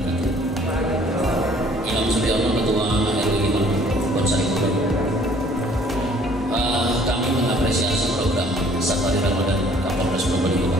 Kami mengapresiasi program Safari Ramadan Kapolres Probolinggo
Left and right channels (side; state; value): both; normal; correlation 0.57